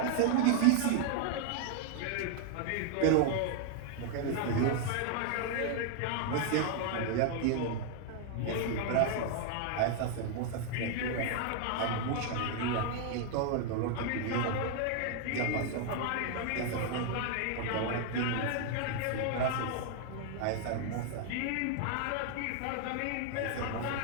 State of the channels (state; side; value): different; both; correlation 0.00